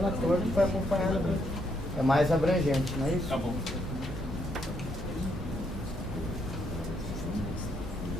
que foi acompanhada. É mais abrangente, não é isso? Tá bom.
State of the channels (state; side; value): normal; both; correlation 0.74